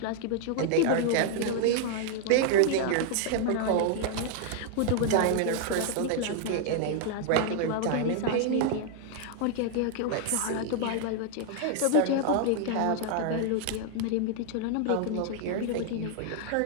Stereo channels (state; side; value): different; both; correlation 0.00